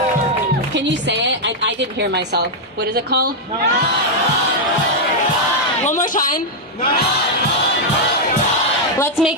Can you say it? I didn't hear myself. What is it called? One more time. Let's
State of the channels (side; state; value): both; normal; correlation -0.03